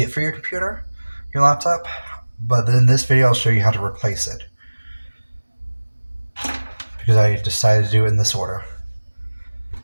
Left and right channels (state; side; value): inverted; both; correlation -1.00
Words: for your computer, your laptop. But then this video I'll show you how to replace it because I decided to do it in this order.